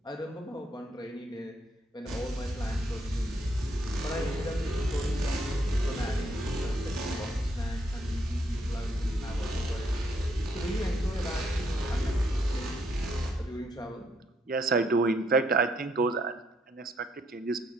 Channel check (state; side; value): normal; both; correlation 0.73